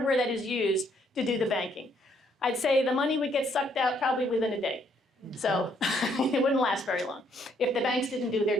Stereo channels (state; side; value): normal; both; correlation 0.69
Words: that is used to do the banking? I'd say the money would get sucked out probably within a day. So it wouldn't last very long if the banks didn't do